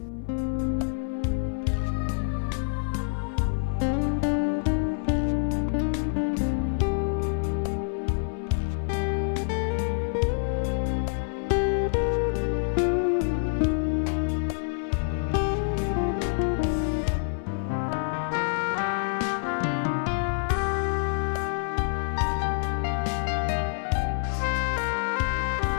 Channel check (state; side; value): silent; right; 60 dB below the other